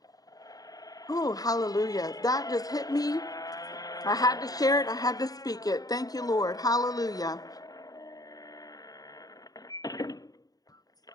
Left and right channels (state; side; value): late; right; 0.18 ms